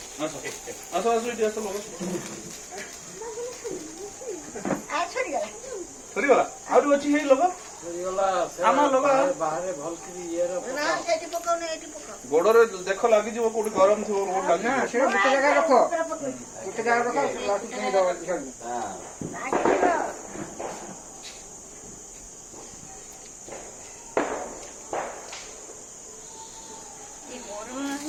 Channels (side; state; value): both; identical; correlation 1.00